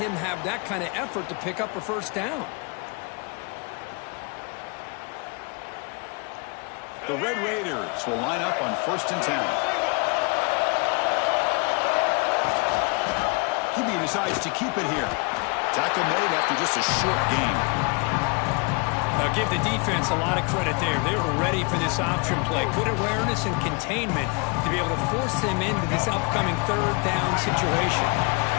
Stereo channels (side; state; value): right; quieter; 31.7 dB